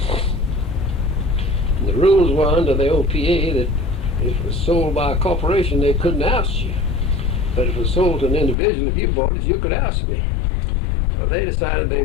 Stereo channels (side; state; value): right; drops out; at 8.6 s